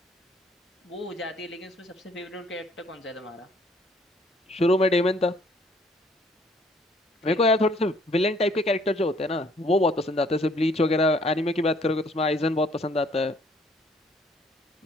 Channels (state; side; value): normal; both; correlation 0.61